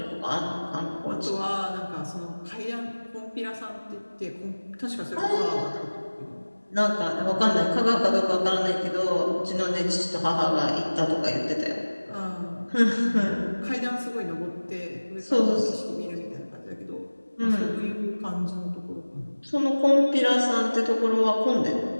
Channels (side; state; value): both; inverted; correlation -1.00